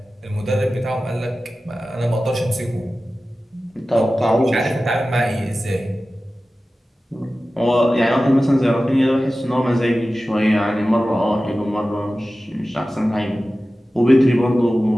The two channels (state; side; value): normal; both; correlation 0.95